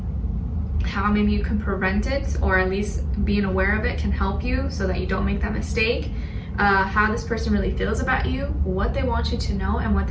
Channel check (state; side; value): identical; both; correlation 1.00